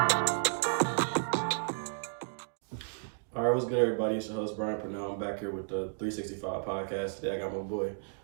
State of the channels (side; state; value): left; silent; digital silence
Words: What's good, everybody? It's your host, Brian Pernell. I'm back here with the 3Sixty5Podcast. Today I got my boy,